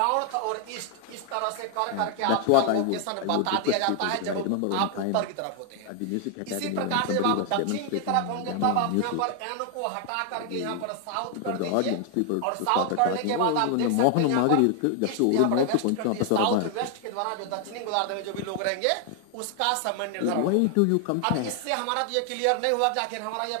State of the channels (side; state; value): both; different; correlation 0.00